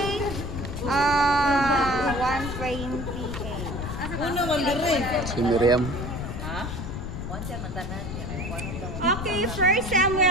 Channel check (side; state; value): left; noise; rumble, 6 dB below the sound